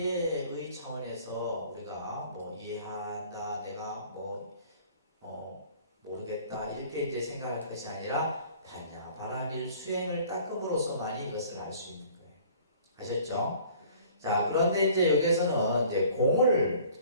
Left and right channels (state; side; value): inverted; both; correlation -0.52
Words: 차원에서 우리가 뭐 이해한다, 내가 모르겠다 이렇게 이제 생각할 것이 아니라 반야바라미를 수행을 닦음으로써만이 이것을 알 수 있는 거예요. 아셨죠? 자, 그런데 이제 여기서는 이제